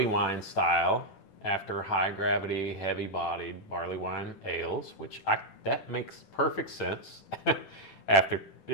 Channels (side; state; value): right; late; 10 ms